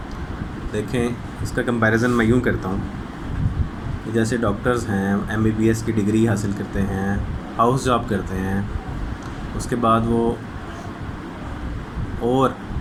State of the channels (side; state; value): both; identical; correlation 1.00